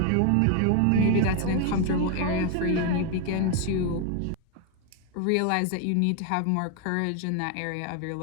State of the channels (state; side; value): different; both; correlation 0.01